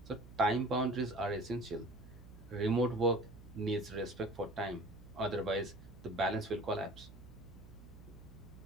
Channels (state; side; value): noise; right; hum, 18 dB below the sound